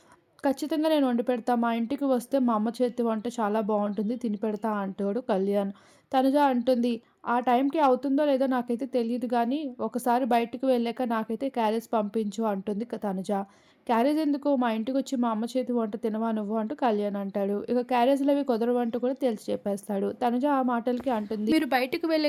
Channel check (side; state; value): both; identical; correlation 1.00